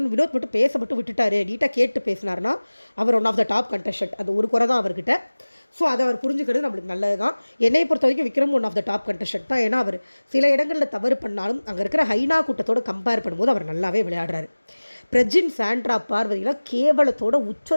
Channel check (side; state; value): both; inverted; correlation -1.00